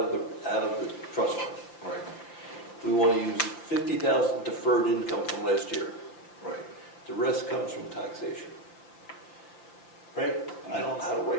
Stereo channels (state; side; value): late; right; 5.8 ms